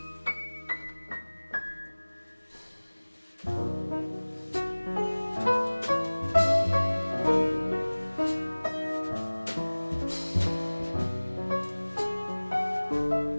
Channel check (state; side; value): inverted; both; correlation -1.00